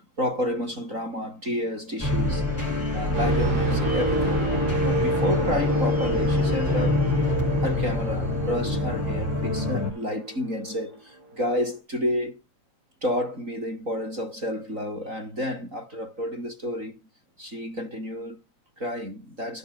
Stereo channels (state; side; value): late; left; 3.9 ms